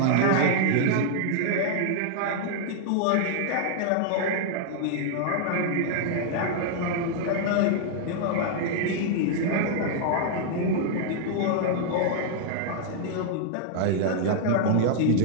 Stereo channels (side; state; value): both; different; correlation -0.01